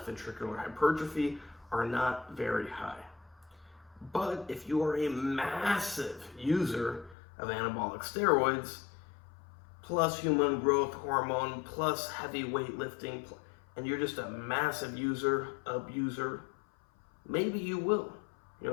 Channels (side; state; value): right; drops out; at 7.2 s